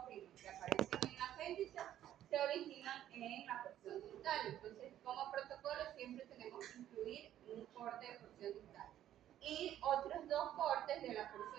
que aparecen en el apéndice se originan en la porción distal. Entonces, como protocolo siempre tenemos que incluir un corte de porción distal y otros dos cortes de la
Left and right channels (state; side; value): quieter; left; 11.9 dB